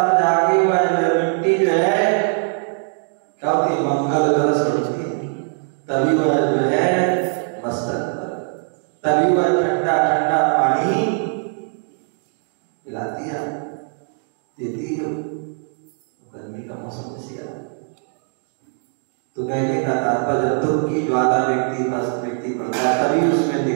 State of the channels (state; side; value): silent; left; 57 dB below the other